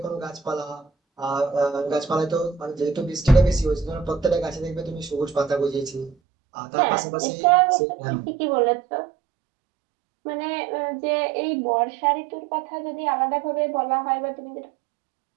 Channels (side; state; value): left; drops out; at 6.2 s